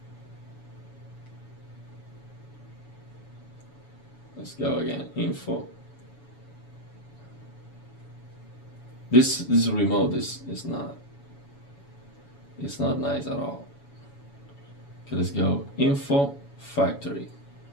Let's go again, info. This remote is not, it's not nice at all. Okay, let's go info factory.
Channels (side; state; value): right; late; 7.1 ms